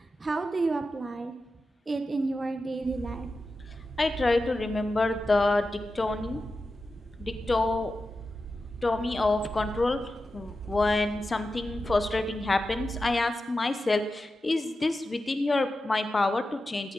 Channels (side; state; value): both; normal; correlation 0.91